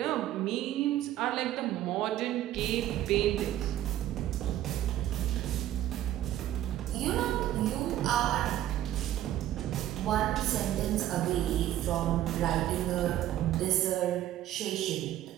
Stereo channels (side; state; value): left; quieter; 13.0 dB